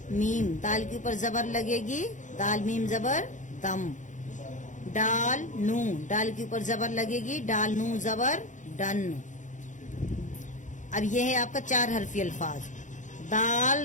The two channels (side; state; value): right; late; 0.36 ms